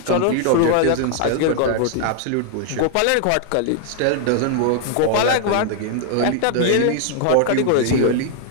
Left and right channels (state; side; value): different; both; correlation 0.00